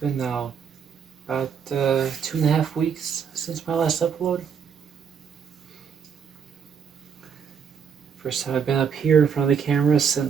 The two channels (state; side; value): quieter; left; 7.0 dB